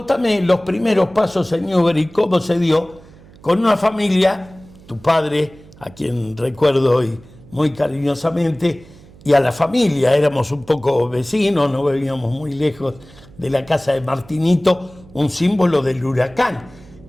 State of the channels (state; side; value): noise; right; hum, 23 dB below the sound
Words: los primeros pasos en Newbery, cómo se dio con una familia, tu padre, a quien recuerdo hoy muy cariñosamente, y a la familia. Éramos un poco vecinos, no vivíamos muy lejos de la casa de Martinito, un símbolo del Huracán.